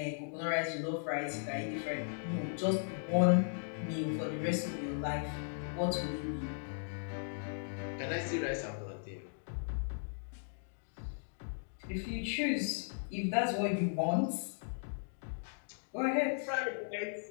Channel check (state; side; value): silent; right; digital silence